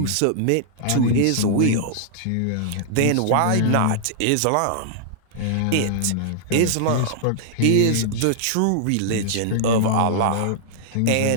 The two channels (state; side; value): different; both; correlation -0.01